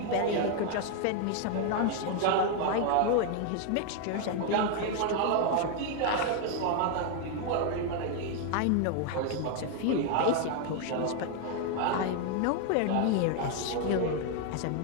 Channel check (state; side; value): different; both; correlation 0.00